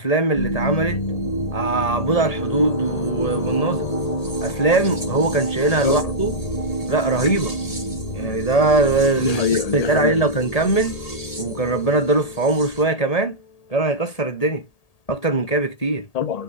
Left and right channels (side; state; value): right; late; 1.8 ms